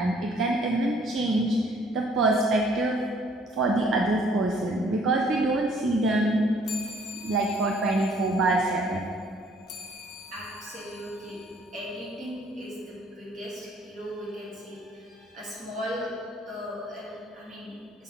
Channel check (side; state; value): both; normal; correlation 0.61